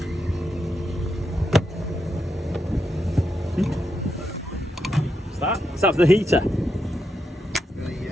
What's that? Is that for the heater?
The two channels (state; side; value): normal; both; correlation 0.83